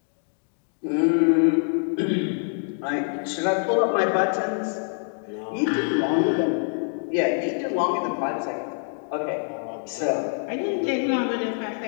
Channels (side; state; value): right; silent; 57 dB below the other